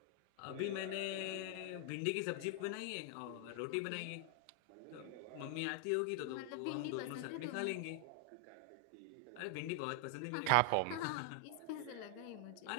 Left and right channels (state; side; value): different; both; correlation 0.00